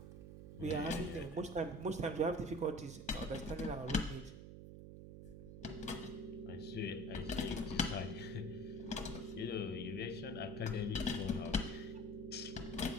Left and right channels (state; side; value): noise; right; hum, 11 dB below the sound